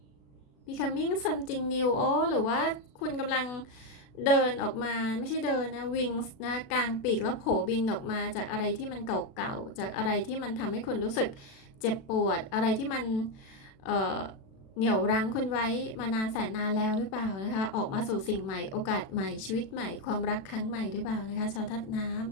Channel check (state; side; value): late; right; 36 ms